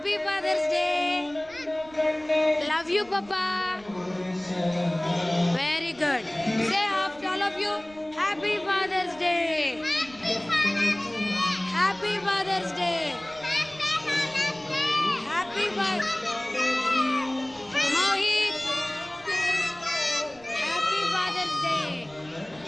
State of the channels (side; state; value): right; noise; rumble, 25 dB below the sound